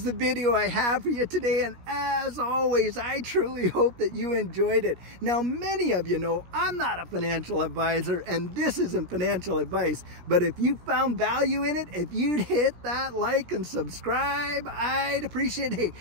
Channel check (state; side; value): late; left; 17 ms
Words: the video I have for you today, and as always, I truly hope that you enjoyed it. Now, many of you know I'm not a financial advisor, and this isn't financial advice, but if you found value in it, if you'd hit that like and subscribe, I'd appreciate it. Hey,